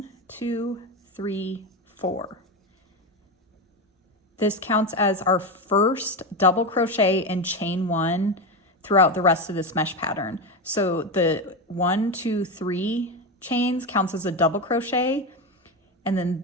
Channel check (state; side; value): normal; both; correlation 0.16